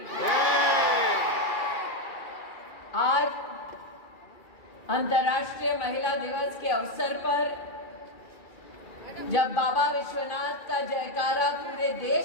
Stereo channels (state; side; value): late; right; 2.3 ms